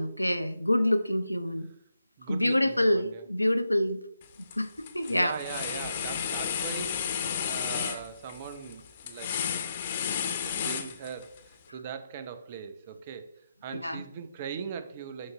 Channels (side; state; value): both; inverted; correlation -0.85